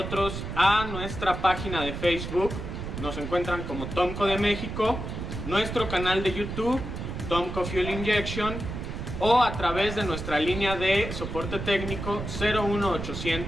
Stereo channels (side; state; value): right; noise; rumble, 6 dB below the sound